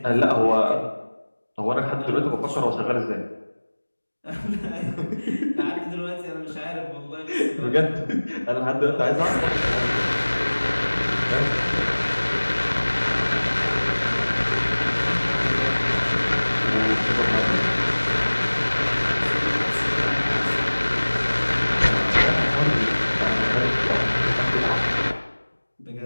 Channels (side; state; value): both; inverted; correlation -1.00